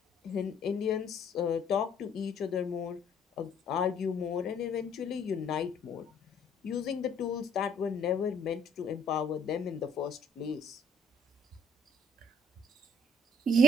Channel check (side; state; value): both; normal; correlation 0.62